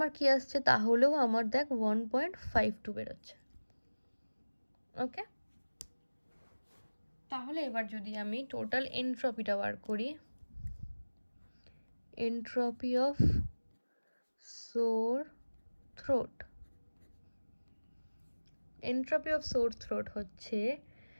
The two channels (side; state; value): both; inverted; correlation -1.00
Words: কি আসছে, তাহলেও আমার দেখ 1.52 বেরোচ্ছে। ওকে, তাহলে এবার যদি আমি টোটাল এন্ট্রপিটা বার করি, entropy of sore throat, entropy of sore throat হচ্ছে